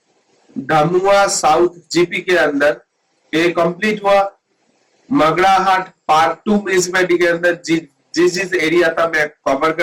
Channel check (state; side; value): identical; both; correlation 1.00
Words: धामुआ साउथ जीपी के अंदर। ये कंप्लीट हुआ मगड़ाहट पार्ट 2 म्यूनिसिपैलिटी के अंदर, जिस एरिया था मैं कवर